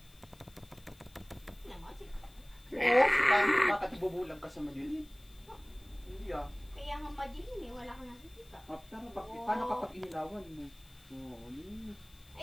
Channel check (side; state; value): left; noise; hiss, 26 dB below the sound